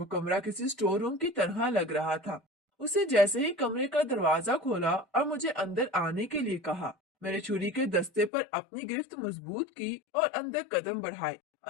कमरा किसी स्टोर रूम की तरह लग रहा था। उसे जैसे ही कमरे का दरवाजा खोला और मुझे अंदर आने के लिए कहा, मैंने छुरी के दस्ते पर अपनी गिरफ्त मजबूत की और अंदर कदम बढ़ाए।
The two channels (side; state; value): right; drops out; at 8.3 s